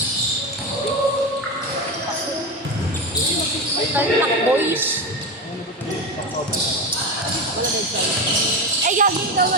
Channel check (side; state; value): both; normal; correlation 0.19